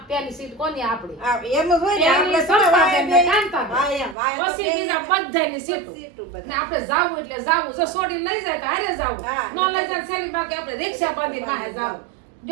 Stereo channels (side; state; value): left; drops out; at 4.2 s